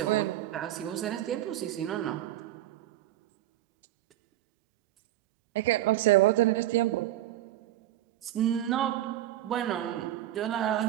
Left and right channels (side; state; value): left; quieter; 13.9 dB